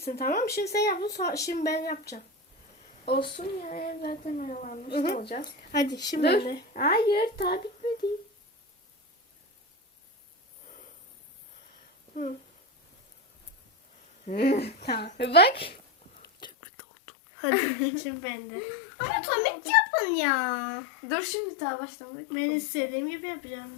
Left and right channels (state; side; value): drops out; right; at 16.5 s